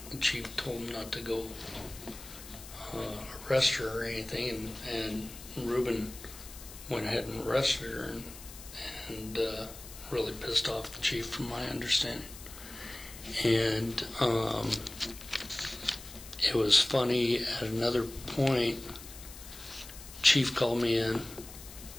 the chief told him not to go arrest her or anything, and Reuben went ahead and arrested her, and really pissed off the chief, from my understanding. And it was funny, at another point, chief called me in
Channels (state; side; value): noise; left; hiss, 15 dB below the sound